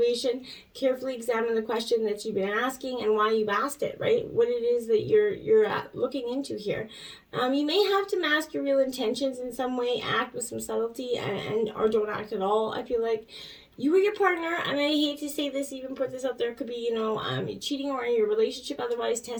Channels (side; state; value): both; identical; correlation 1.00